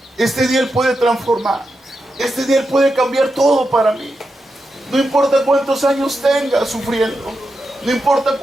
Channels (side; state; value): both; normal; correlation 0.88